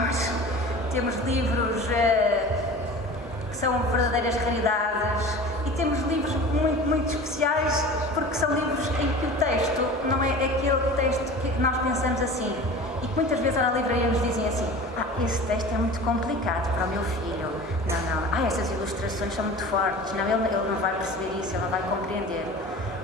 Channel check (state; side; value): normal; both; correlation 0.38